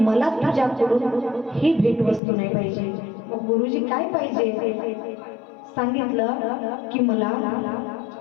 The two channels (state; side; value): drops out; right; at 2.2 s